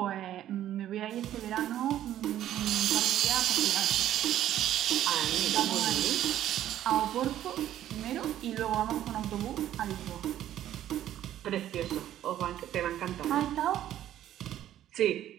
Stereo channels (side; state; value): left; quieter; 12.1 dB